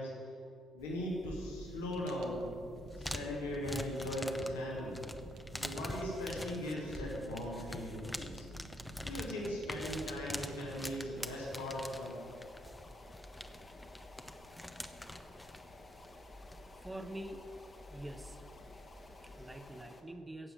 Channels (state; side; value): normal; both; correlation 0.73